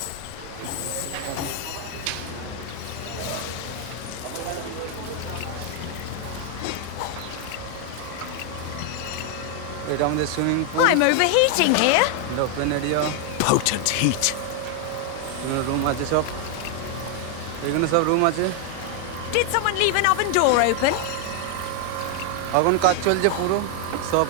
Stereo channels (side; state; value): both; different; correlation 0.00